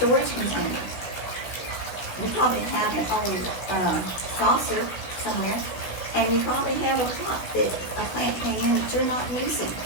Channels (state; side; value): late; right; 16 ms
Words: container. You probably have an old saucer somewhere, and you probably have a pot that a plant came in that you're not using.